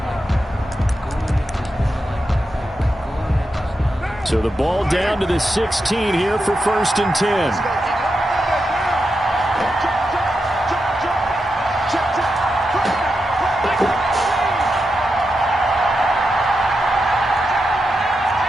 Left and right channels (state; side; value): normal; both; correlation 0.87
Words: So the ball down to the 16 here for first and 10.